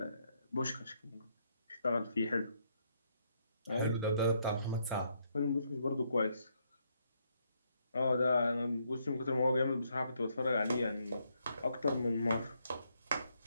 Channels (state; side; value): inverted; both; correlation -0.75